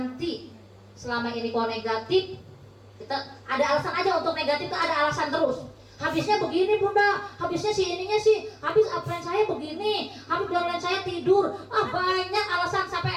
Selama ini kalau negatif, kita ada alasan aja untuk negatif, itu ada alasan terus. Habisnya begini bunda, habisnya si ininya sih, habis upline saya begini, habis downline saya tidur. Banyak alasan sampai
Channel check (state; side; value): identical; both; correlation 1.00